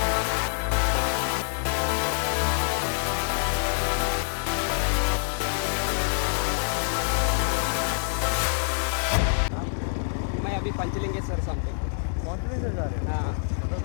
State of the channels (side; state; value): right; silent; 61 dB below the other